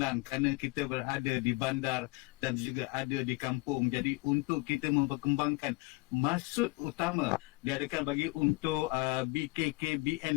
kerana kita berada di bandar dan juga ada di kampung. Jadi untuk kita memperkembangkan maksud utama diadakan bagi untuk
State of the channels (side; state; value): right; quieter; 24.7 dB